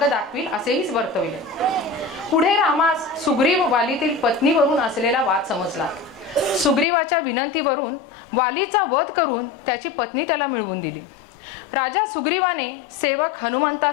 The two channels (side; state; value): right; drops out; at 6.9 s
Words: दाखवील असेही वर्तविले. पुढे रामास सुग्रीव वालीतील पत्नीवरून असलेला वाद समजला. सुग्रीवाच्या विनंतीवरून वालीचा वध करून त्याची पत्नी त्याला मिळवून दिली. राजा सुग्रीवाने सेवक